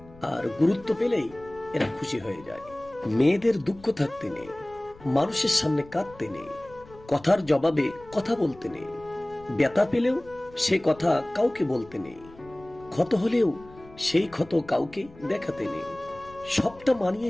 আর গুরুত্ব পেলেই এরা খুশি হয়ে যায়। মেয়েদের দুঃখ থাকতে নেই, মানুষের সামনে কাঁদতে নেই, কথার জবাবে কথা বলতে নেই, ব্যথা পেলেও সে কথা কাউকে বলতে নেই, ক্ষত হলেও সেই ক্ষত কাউকে দেখাতে নেই। সবটা মানিয়ে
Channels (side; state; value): left; noise; rumble, 22 dB below the sound